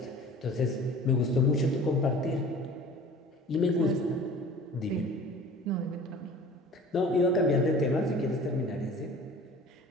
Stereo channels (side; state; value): both; normal; correlation 0.44